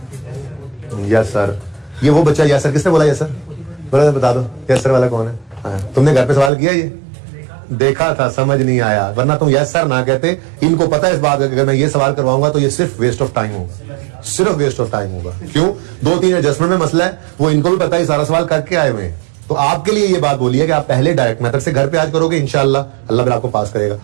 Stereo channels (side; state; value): left; drops out; at 6.5 s